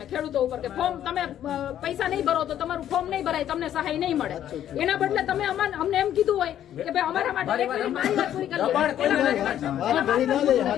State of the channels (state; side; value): quieter; right; 11.0 dB